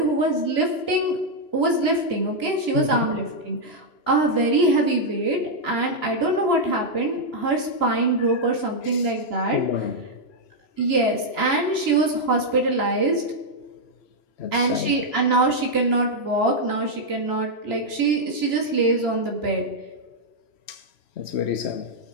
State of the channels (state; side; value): late; right; 2.9 ms